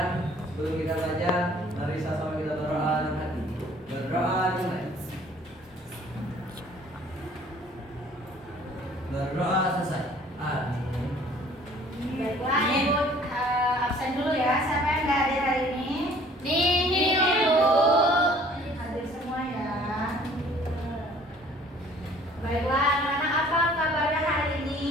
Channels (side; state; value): both; normal; correlation 0.54